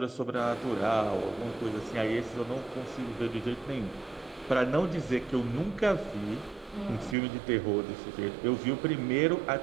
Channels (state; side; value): drops out; left; at 7.2 s